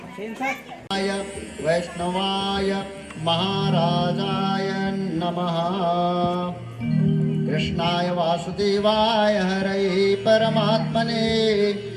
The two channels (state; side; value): identical; both; correlation 1.00